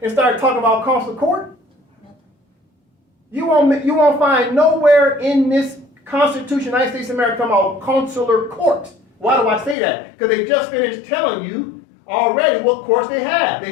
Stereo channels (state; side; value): drops out; right; at 9.8 s